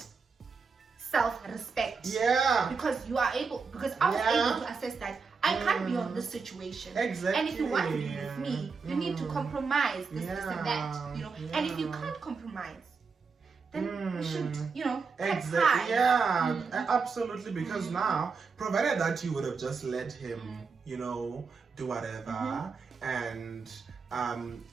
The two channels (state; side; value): quieter; left; 5.0 dB